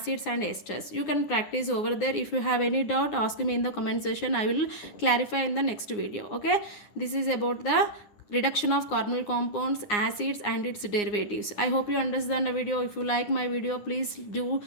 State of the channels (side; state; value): right; late; 9.7 ms